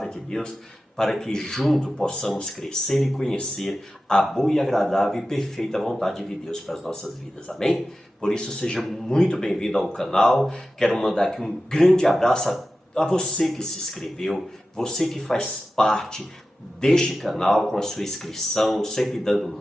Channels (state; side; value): normal; both; correlation 0.94